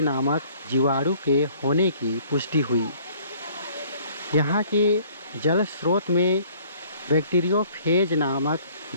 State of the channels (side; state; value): both; inverted; correlation -0.56